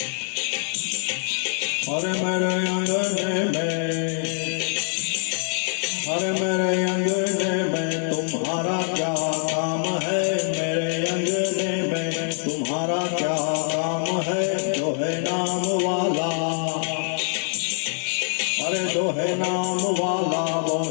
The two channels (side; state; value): right; silent; 59 dB below the other